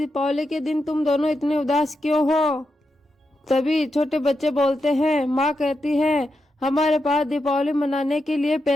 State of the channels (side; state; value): both; normal; correlation 0.86